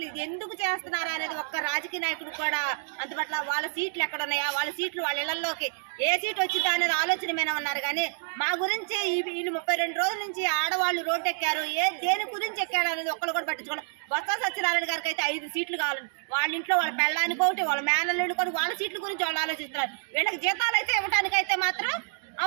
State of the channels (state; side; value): silent; left; digital silence